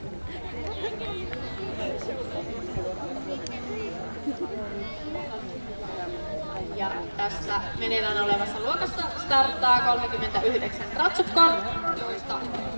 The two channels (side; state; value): both; inverted; correlation -1.00